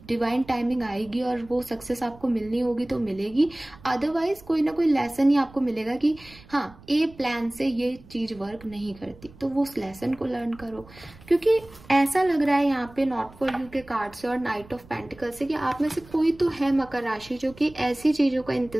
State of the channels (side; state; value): right; noise; rumble, 22 dB below the sound